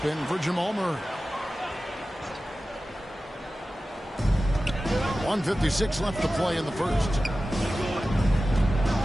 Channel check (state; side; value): normal; both; correlation 0.95